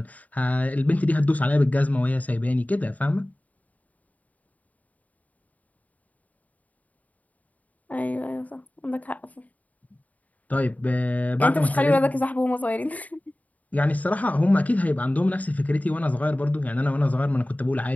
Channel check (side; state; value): right; late; 0.073 ms